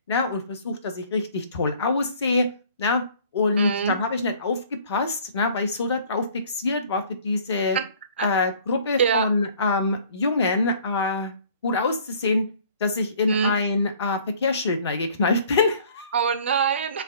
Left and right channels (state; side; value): inverted; both; correlation -0.53